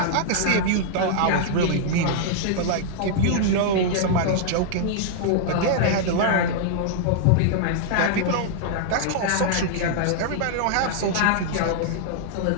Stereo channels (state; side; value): different; both; correlation -0.01